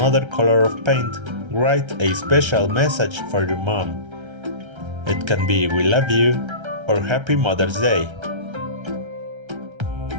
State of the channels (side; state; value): left; late; 1.3 ms